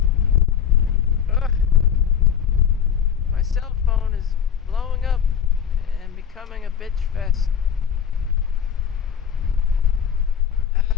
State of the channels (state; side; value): quieter; right; 8.3 dB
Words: My cell phone is blowing up and becoming a bitch fest.